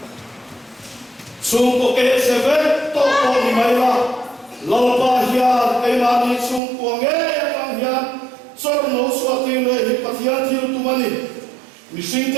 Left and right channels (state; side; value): drops out; left; at 6.6 s